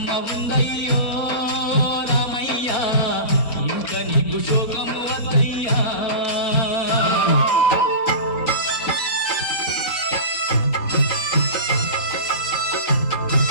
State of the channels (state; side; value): late; right; 3.9 ms